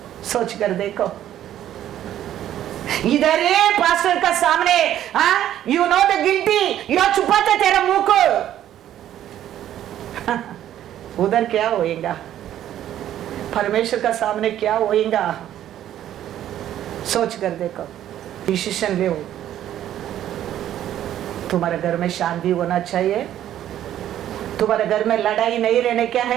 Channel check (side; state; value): left; quieter; 11.7 dB